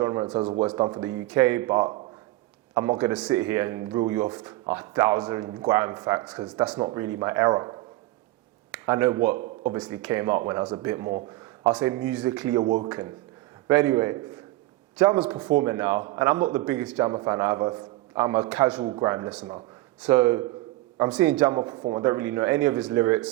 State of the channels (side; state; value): left; quieter; 18.5 dB